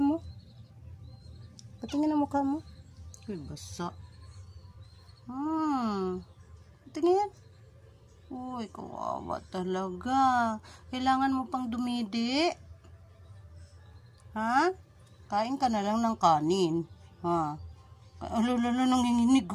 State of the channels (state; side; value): identical; both; correlation 1.00